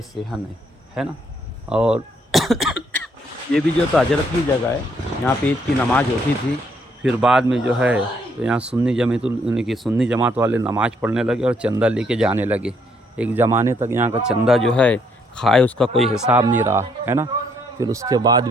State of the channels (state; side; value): normal; both; correlation 0.70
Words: सेहन है ना। और ये भी जो तो हजरत की जगह है, यहाँ पे ईद की नमाज़ होती थी। फिर बाद में जो है तो यहाँ सुन्नी जमात वाले नमाज़ पढ़ने लगे और चंदा लेके जाने लगे। एक ज़माने तक यहाँ का चंदा जो है खाए उसका कोई हिसाब नहीं रहा, है ना। फिर उसके बाद